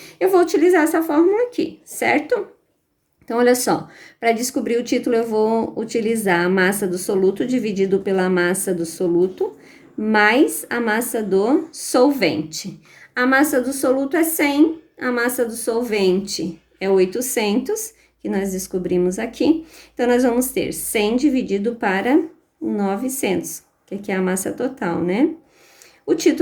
eu vou utilizar essa fórmula aqui, certo? Então, olha só, para descobrir o título, eu vou utilizar a massa do soluto dividido pela massa do soluto, mais a massa do solvente. A massa do soluto é 100, a massa do solvente é 800, que nós descobrimos aqui. Então, nós vamos ter 100 dividido para 900, que aqui é a massa total, né? O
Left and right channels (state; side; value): identical; both; correlation 1.00